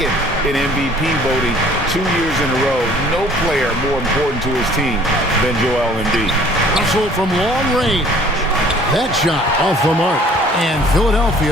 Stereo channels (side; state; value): both; normal; correlation 0.54